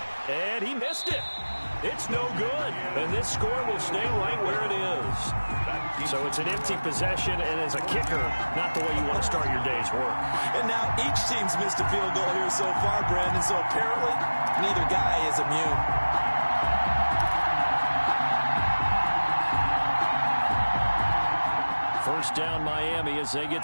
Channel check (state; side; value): inverted; both; correlation -1.00